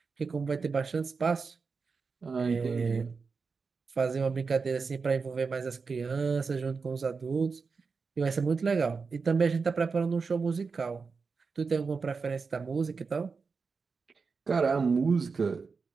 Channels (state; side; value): quieter; left; 4.9 dB